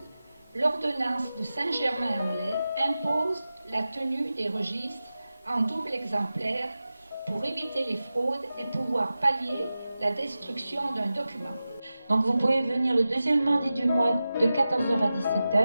l'ordonnance de Saint-Germain-en-Laye impose la tenue des registres en double exemplaire pour éviter les fraudes et pouvoir pallier la destruction d'un document. Donc vous pouvez venir le deuxième mardi du mois de 14h à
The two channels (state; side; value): inverted; both; correlation -0.94